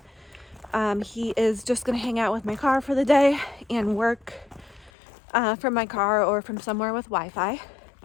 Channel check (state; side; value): drops out; right; at 4.9 s